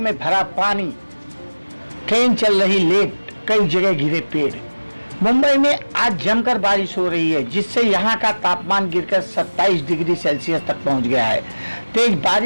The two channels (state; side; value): inverted; both; correlation -1.00